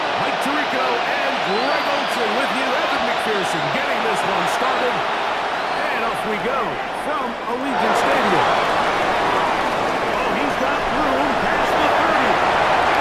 Tirico and Greg Olsen with you. Evan McPherson getting this one started. And off we go from Allegiant Stadium. Oh, he's got room past the 30.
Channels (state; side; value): identical; both; correlation 1.00